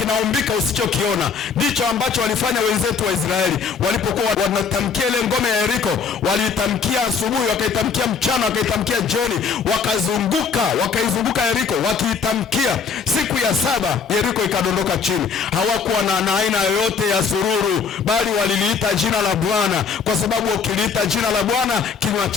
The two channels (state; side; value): quieter; right; 5.9 dB